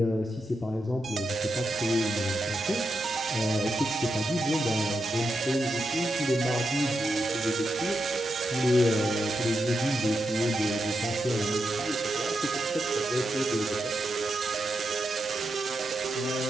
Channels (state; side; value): normal; both; correlation 0.86